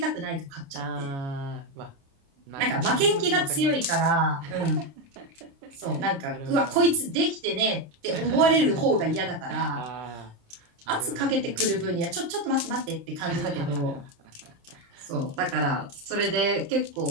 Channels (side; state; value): left; late; 29 ms